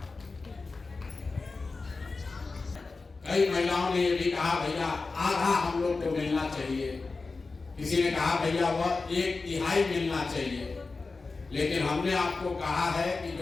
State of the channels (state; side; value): quieter; right; 4.0 dB